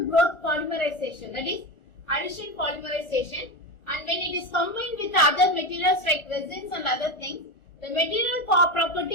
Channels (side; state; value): right; late; 1.4 ms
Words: polymerization, that is addition polymerization, and when it is combined with other materials like resins and other things, the material